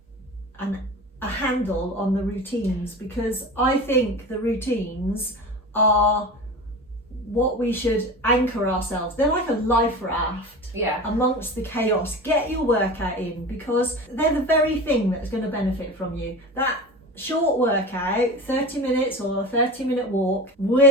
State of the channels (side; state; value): both; normal; correlation 0.32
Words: a handle on the routines, because I think the routines are what we should anchor ourselves. They're like a life raft Yeah. amongst the chaos. Get your workout in, because they're the very thing that's going to benefit from you. That short workout, 30 minutes or a 30-minute walk,